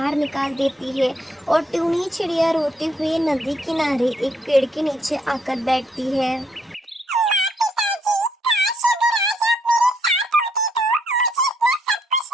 निकाल देती है और टूनी चिड़िया रोते हुए नदी किनारे एक पेड़ के नीचे आकर बैठती है।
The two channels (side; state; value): both; normal; correlation 0.72